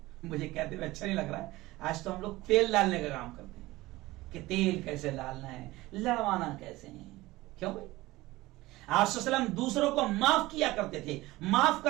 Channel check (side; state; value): left; quieter; 18.9 dB